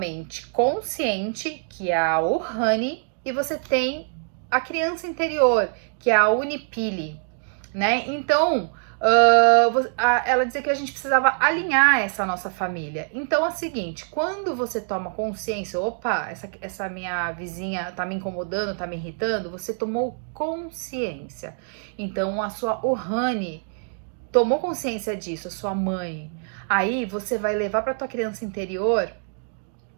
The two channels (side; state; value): left; silent; 62 dB below the other